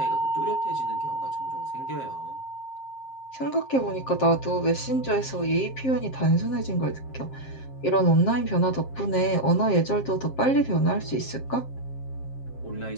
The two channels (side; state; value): right; late; 7.5 ms